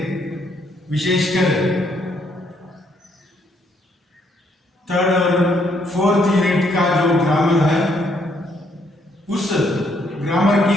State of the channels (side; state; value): both; normal; correlation 0.71